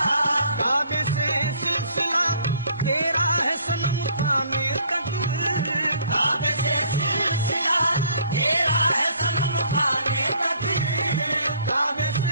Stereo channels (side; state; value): both; inverted; correlation -0.59